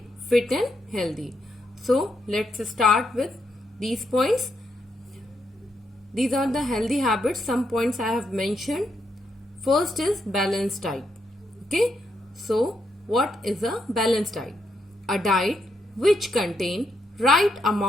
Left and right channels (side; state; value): both; normal; correlation 0.79